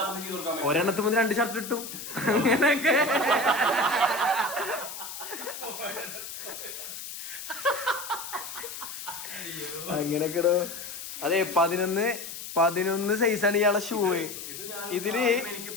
ഒരെണ്ണത്തിന് മുതൽ 2 ഷർട്ട് കിട്ടും അങ്ങനൊക്കെ. അങ്ങനൊക്കെടോ. അതെ, 11 സൈസാണ് ഇയാളെ ഷൂ. ഇതില്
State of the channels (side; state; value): left; noise; hiss, 9 dB below the sound